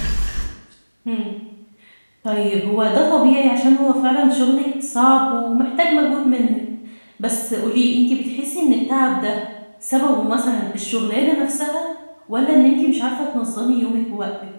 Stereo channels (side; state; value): both; inverted; correlation -1.00